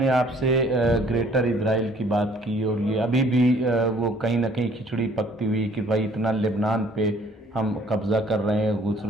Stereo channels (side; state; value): both; normal; correlation 0.58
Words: آپ سے گریٹر اسرائیل کی بات کی، اور یہ ابھی بھی وہ کہیں نہ کہیں کھچڑی پکتی ہوئی کہ بھائی اتنا لبنان پہ ہم قبضہ کر رہے ہیں، گھس